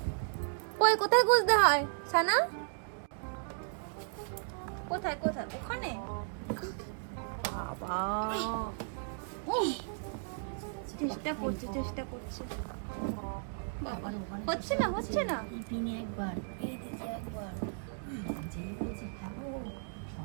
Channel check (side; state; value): left; silent; digital silence